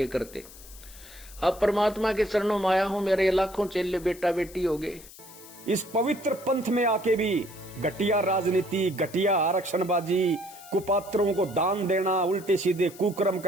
करते। अब परमात्मा के चरणों में आया हूं, मेरे लाखों चेले बेटा बेटी हो गए। इस पवित्र पंथ में आके भी घटिया राजनीति, घटिया आरक्षणबाजी, कुपात्रों को दान देना, उल्टे सीधे कुकर्म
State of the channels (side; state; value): left; noise; hiss, 19 dB below the sound